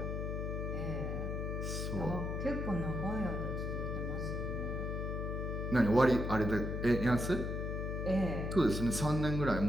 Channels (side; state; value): left; noise; hum, 2 dB below the sound